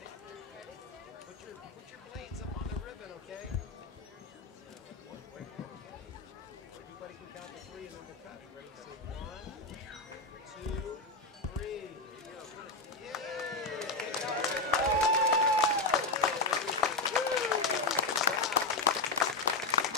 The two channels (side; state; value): right; quieter; 3.6 dB